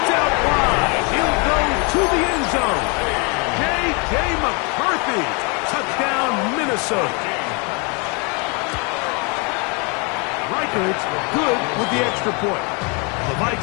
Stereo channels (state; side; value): quieter; right; 32.9 dB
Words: out wide. He'll go to the end zone. J.J. McCarthy. Touchdown, Minnesota. Reichardt's good with the extra point. The